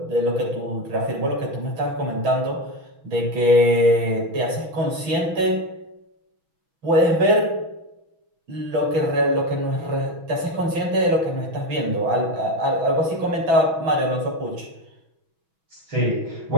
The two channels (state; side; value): late; left; 6.2 ms